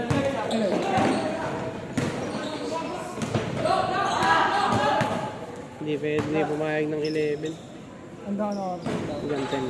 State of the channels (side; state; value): both; identical; correlation 1.00